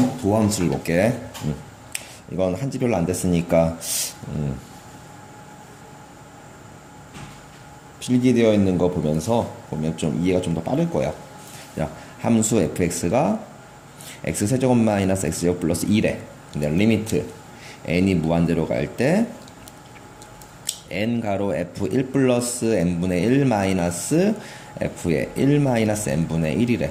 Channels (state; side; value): identical; both; correlation 1.00